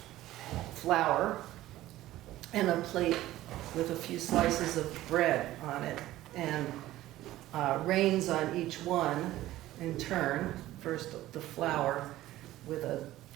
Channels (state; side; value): quieter; left; 15.4 dB